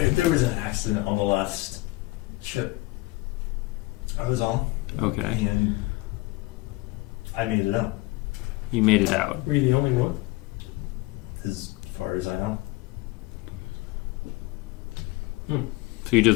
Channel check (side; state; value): right; quieter; 21.3 dB